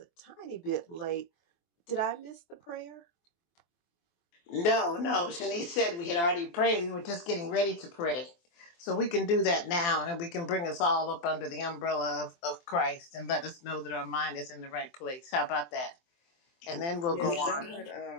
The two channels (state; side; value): late; right; 23 ms